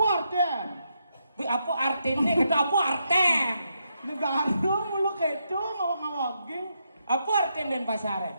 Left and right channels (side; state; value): both; inverted; correlation -0.81